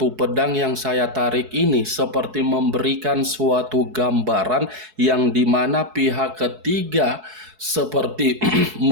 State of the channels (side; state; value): left; late; 4.7 ms